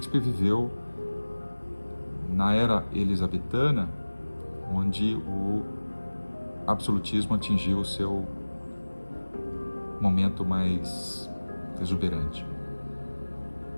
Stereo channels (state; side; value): inverted; both; correlation -1.00